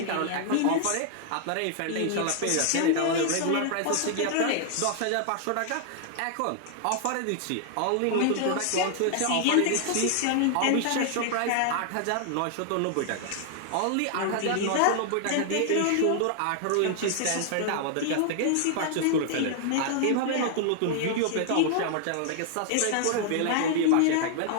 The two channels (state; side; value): different; both; correlation 0.00